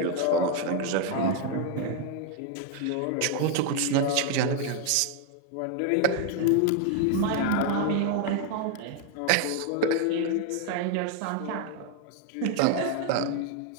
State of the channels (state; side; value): different; both; correlation 0.00